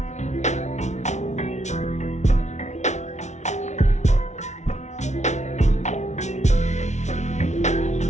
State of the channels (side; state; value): right; late; 0.33 ms